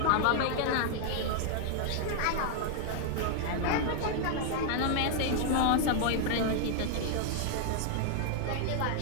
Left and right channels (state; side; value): different; both; correlation 0.00